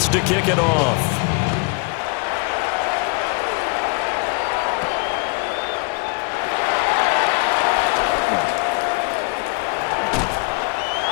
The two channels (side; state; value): right; quieter; 32.4 dB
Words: to kick it off.